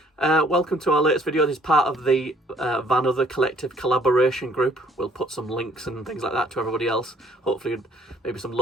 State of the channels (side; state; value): both; normal; correlation 0.61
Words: Welcome to our latest video. This is part of the Vanother collective collaboration group. We'll put some links and things like that to everybody else. Hopefully maybe some